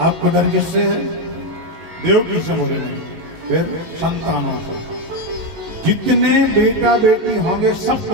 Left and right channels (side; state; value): left; late; 19 ms